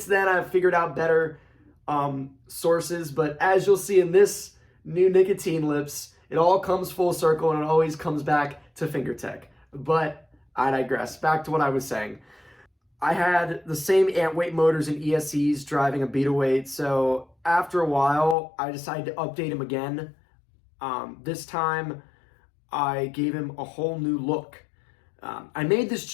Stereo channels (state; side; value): drops out; right; at 18.4 s